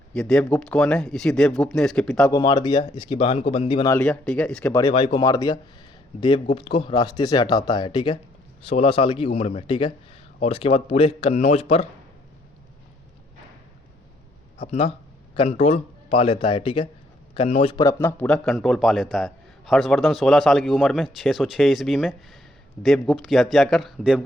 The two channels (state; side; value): normal; both; correlation 0.68